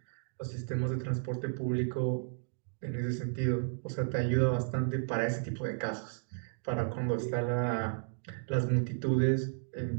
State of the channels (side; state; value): left; silent; digital silence